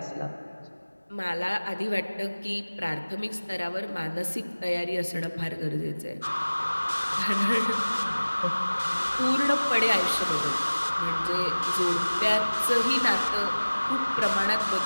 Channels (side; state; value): both; inverted; correlation -1.00